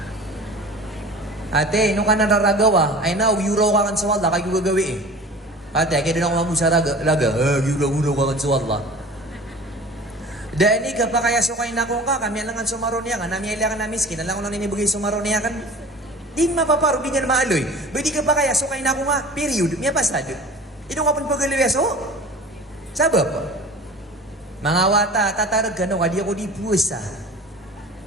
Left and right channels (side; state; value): both; normal; correlation 0.40